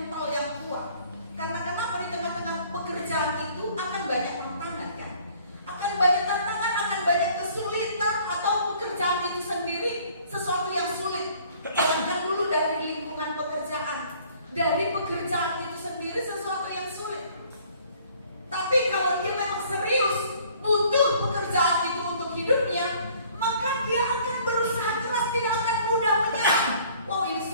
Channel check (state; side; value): inverted; both; correlation -0.56